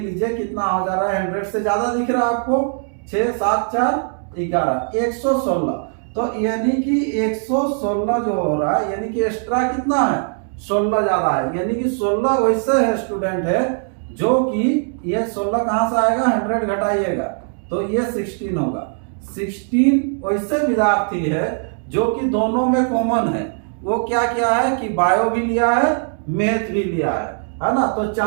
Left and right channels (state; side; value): silent; left; 56 dB below the other